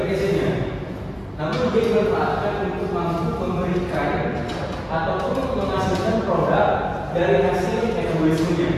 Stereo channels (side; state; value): both; identical; correlation 1.00